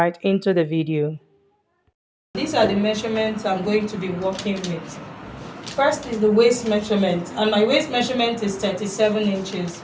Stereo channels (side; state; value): both; identical; correlation 1.00